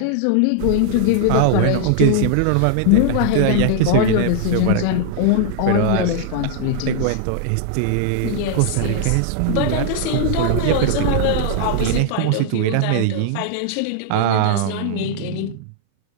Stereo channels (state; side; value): different; both; correlation -0.01